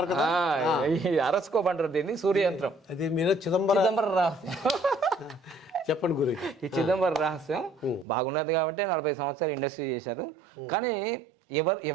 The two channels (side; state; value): left; drops out; at 8.1 s